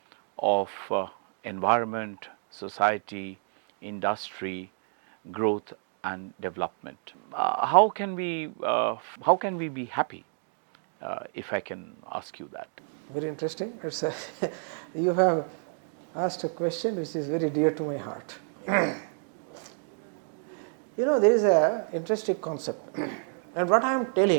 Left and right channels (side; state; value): left; silent; 58 dB below the other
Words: of environment, society, industry, growth, and development? How can we be happy? If I can ask you that. Very interesting. It's you have asked a question which is very dear to my heart. There is a interesting concept, and what I am